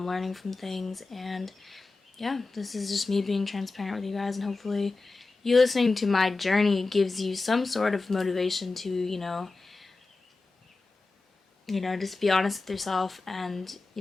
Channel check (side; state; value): right; quieter; 3.6 dB